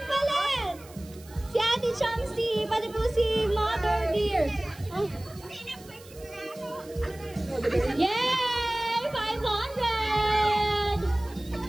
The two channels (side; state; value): right; noise; hiss, 22 dB below the sound